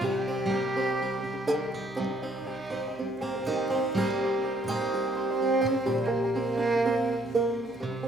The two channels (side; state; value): both; normal; correlation 0.67